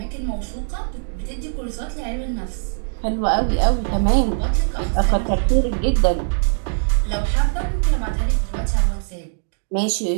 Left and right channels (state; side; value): silent; left; digital silence